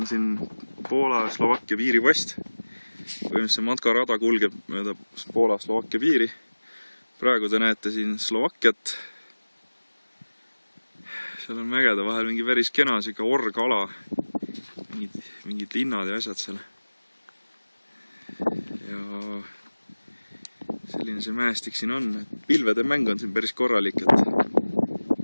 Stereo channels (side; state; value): both; inverted; correlation -1.00